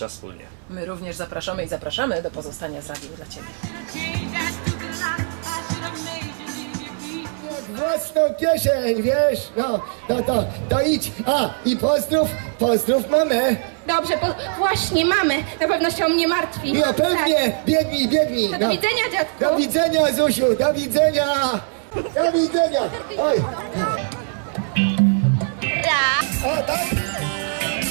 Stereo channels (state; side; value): silent; left; 59 dB below the other